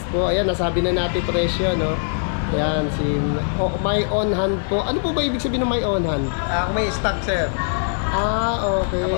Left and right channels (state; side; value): silent; right; digital silence